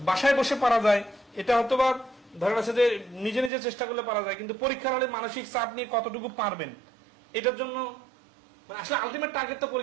বাসায় বসে পারা যায়, এটা হয়তো বা ধরে আছে যে নিজে নিজে চেষ্টা করলে পারা যায়, কিন্তু পরীক্ষার হলে মানসিক চাপ নিয়ে কতটুকু পারবেন এটার জন্য মানে আসলে আলটিমেট টার্গেট তো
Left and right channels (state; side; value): drops out; left; at 3.5 s